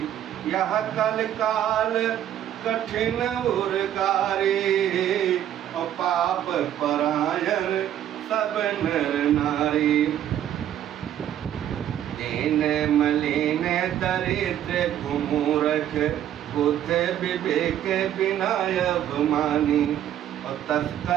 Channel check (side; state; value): left; quieter; 11.0 dB